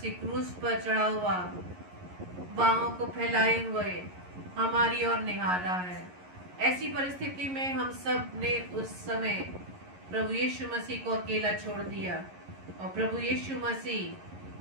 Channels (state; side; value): late; left; 11 ms